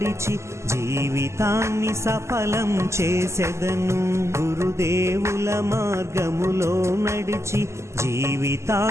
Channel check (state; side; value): late; left; 0.13 ms